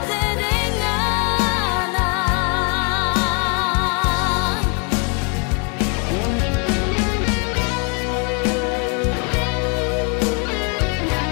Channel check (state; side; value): quieter; right; 36.5 dB